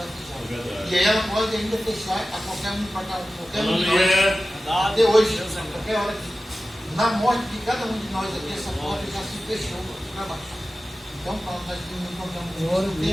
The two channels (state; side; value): normal; both; correlation 0.95